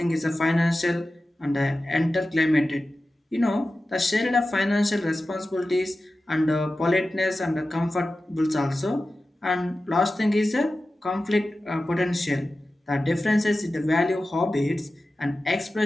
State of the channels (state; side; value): normal; both; correlation 0.94